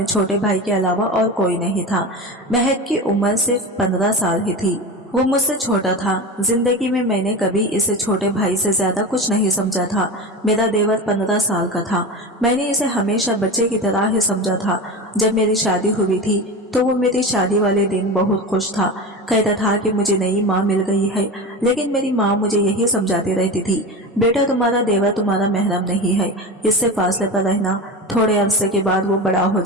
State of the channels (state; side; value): normal; both; correlation 0.26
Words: छोटे भाई के अलावा और कोई नहीं था। महक की उम्र सिर्फ 15 साल ही थी। वो मुझसे छोटा था। जिंदगी में मैंने कभी इसे छोटे भाई से ज्यादा कुछ नहीं समझा था। मेरा देवर 15 साल का था। मैंने इसे हमेशा बच्चे की तरह ही समझा था। जब मेरी शादी हुई थी तो वो मेरी शादी वाले दिन बहुत खुश था। कहता था कि मुझे नई माँ मिल गई है। लेकिन मेरी माँ मुझे यही समझाती रहती थी, बेटा तुम्हारा देवर तुम्हारा महरम नहीं है, इससे फासले पर रहना। थोड़े अरसे के बाद वो बड़ा हो